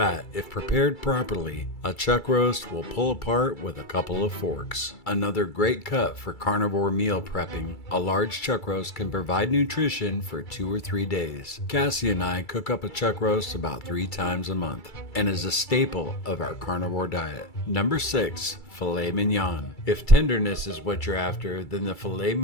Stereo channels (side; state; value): right; late; 2.3 ms